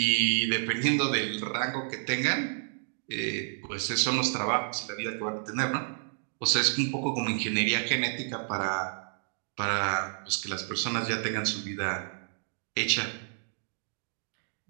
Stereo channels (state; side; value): silent; left; digital silence